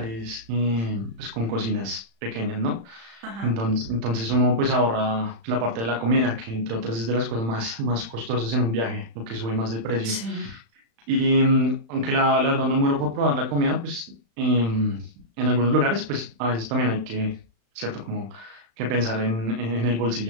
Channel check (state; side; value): late; left; 35 ms